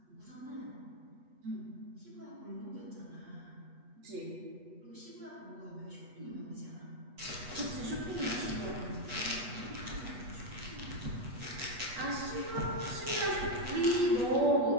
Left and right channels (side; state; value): left; late; 8.3 ms